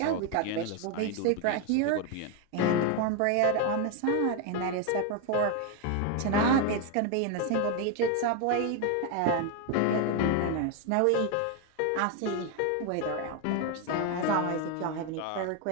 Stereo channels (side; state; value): both; different; correlation 0.01